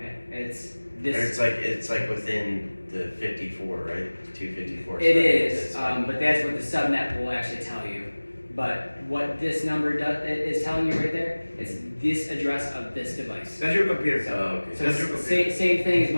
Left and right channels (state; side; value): inverted; both; correlation -1.00